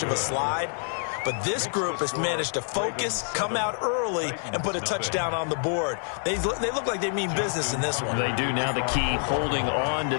of a slide. But this group has managed to focus, come out early, and put a touchdown on the board. They look like they mean business in this one. They do. Now the key, holding on to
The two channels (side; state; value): right; silent; 57 dB below the other